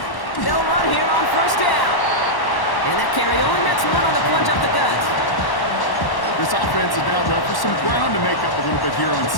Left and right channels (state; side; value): late; right; 1.1 ms